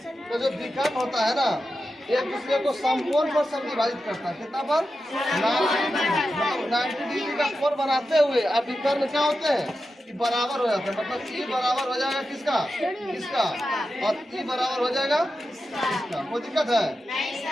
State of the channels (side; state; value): both; normal; correlation 0.91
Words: जो विकर्ण होता है ना, एक दूसरे को समकोण पर समविभाजित करता है। कितना पर, 90 डिग्री का कोण बनाते हुए अब विकर्ण क्या होते हैं, कि बराबर हो जाते हैं। मतलब ई बराबर हो जाएगा किसका, इसका, और ई बराबर हो जाएगा इसका। कोई दिक्कत है,